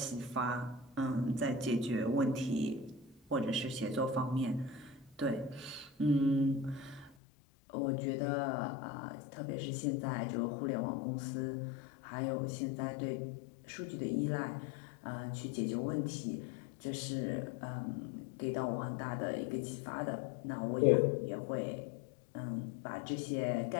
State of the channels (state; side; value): drops out; right; at 7.2 s